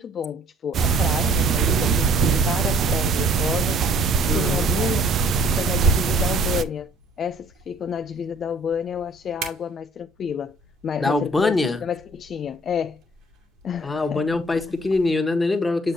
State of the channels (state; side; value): normal; both; correlation 0.57